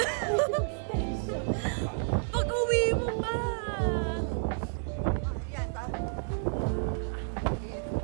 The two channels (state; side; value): silent; left; digital silence